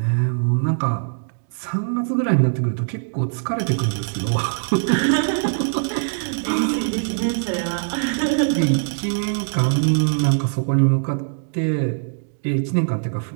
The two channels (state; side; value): silent; left; digital silence